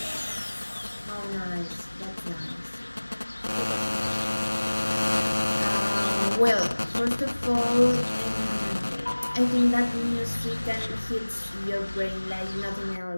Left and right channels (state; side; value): inverted; both; correlation -1.00